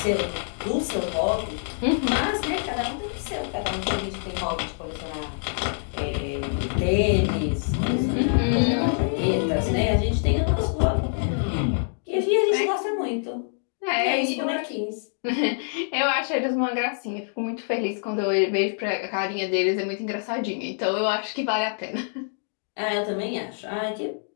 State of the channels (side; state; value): right; silent; digital silence